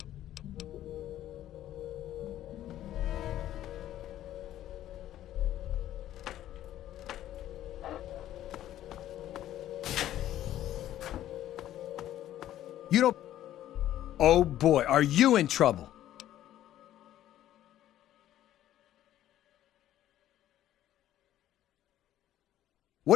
You don't... Oh boy, are you in trouble?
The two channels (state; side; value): quieter; right; 12.7 dB